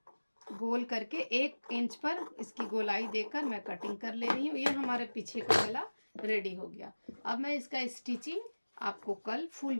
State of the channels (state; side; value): inverted; both; correlation -1.00